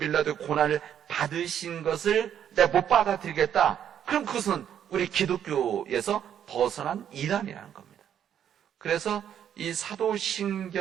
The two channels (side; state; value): left; quieter; 9.5 dB